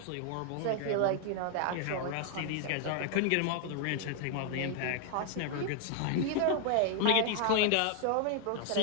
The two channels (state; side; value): different; both; correlation 0.00